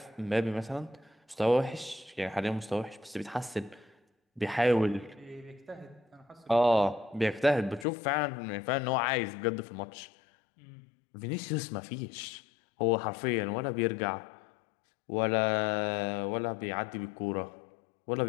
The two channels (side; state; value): right; drops out; at 7.9 s